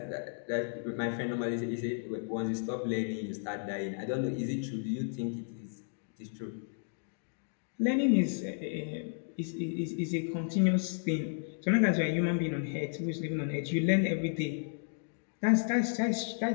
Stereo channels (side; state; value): right; silent; digital silence